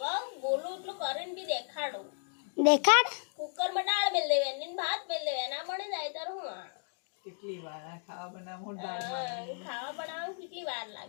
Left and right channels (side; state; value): right; silent; 55 dB below the other